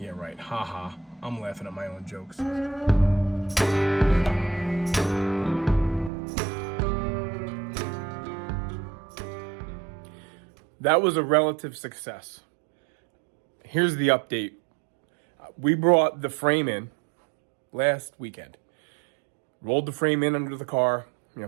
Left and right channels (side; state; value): left; drops out; at 6.1 s